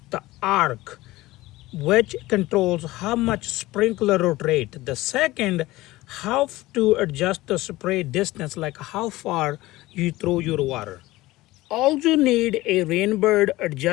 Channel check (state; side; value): quieter; right; 18.4 dB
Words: the arc, which controls how much sprinkler rotate. The second, how to adjust the spray distance, like how far you throw your water. All you need a Rainbird